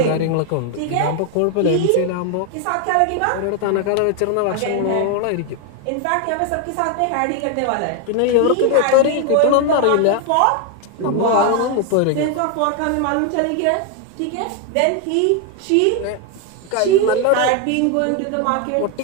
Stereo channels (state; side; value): different; both; correlation 0.01